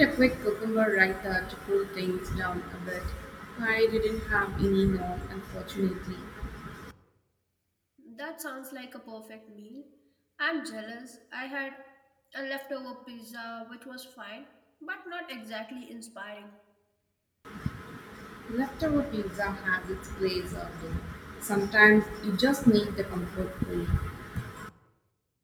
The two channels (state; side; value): identical; both; correlation 1.00